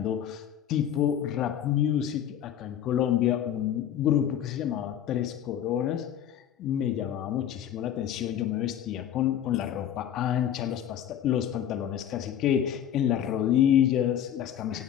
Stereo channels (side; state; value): right; quieter; 10.2 dB